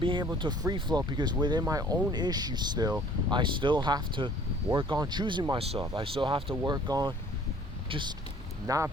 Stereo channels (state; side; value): normal; both; correlation 0.54